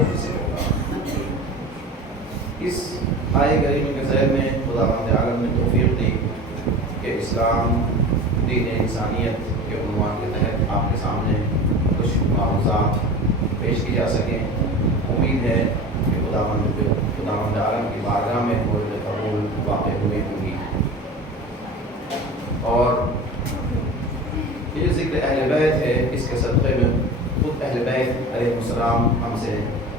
میں سے ہوگا. اس آئے کریمہ کے ذیل میں خداوند عالم نے توفیق دی کہ اسلام دین انسانیت کے عنوان کے تحت آپ کے سامنے کچھ معروضات پیش کی جا سکیں۔ امید ہے کہ خداوند عالم کی بارگاہ میں مورد قبول واقع ہوئے ہوں گی۔ اور یہ ذکر اہل بیت ہے، اس کے صدقے میں خود اہل بیت علیہ السلام ہم سے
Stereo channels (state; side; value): normal; both; correlation 0.34